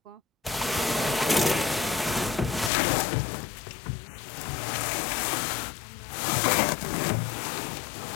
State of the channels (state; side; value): drops out; right; at 2.7 s